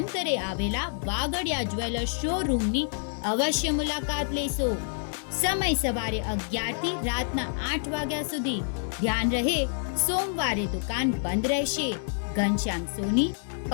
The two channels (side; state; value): right; silent; 60 dB below the other